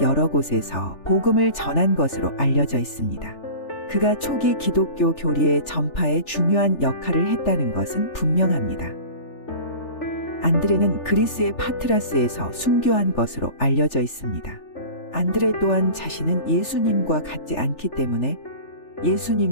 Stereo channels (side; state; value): right; late; 3.4 ms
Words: 여러 곳에서 복음을 전한 것으로 알려져 있습니다. 그가 초기 기독교 교리의 전파에 중요한 역할을 했다는 것은 분명합니다. 안드레는 그리스의 파트라스에서 순교한 것으로 알려져 있습니다. 안드레 또한 자신은 예수님과 같지 않기 때문에